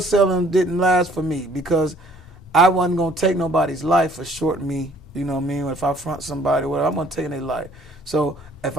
didn't last for me because I wasn't gonna take nobody's life for shorting me. You know what I mean? If I front somebody, whatever, I'm gonna take their life. So if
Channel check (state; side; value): normal; both; correlation 0.58